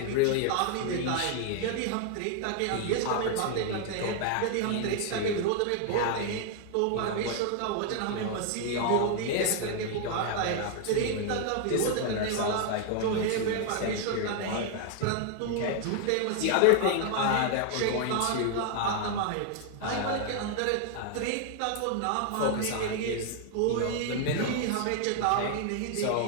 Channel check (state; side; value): different; both; correlation 0.00